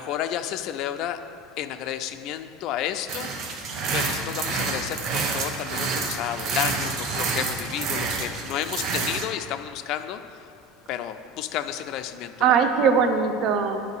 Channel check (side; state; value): both; normal; correlation 0.31